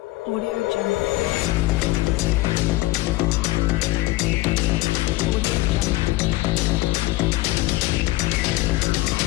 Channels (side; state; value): right; quieter; 19.1 dB